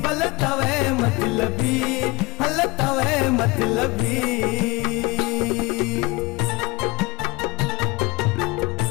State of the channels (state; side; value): quieter; right; 23.5 dB